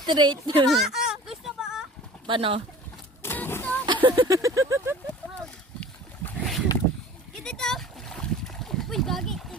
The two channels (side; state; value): both; normal; correlation 0.43